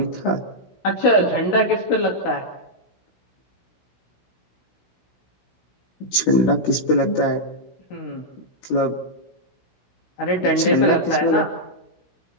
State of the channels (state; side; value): late; right; 16 ms